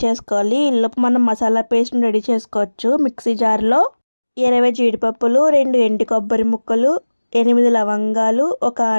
చేసుకోవాలి. ఈలోపు మనం మసాలా పేస్ట్ని రెడీ చేసుకోవచ్చు. మిక్సీ జార్లో 20 జీడిపప్పులు, 2 ఎండు కొబ్బరి ముక్కలు, 8 లవంగాలు, 1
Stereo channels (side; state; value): both; inverted; correlation -1.00